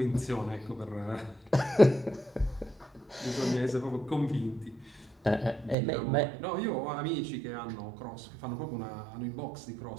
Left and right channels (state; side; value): drops out; left; at 5.8 s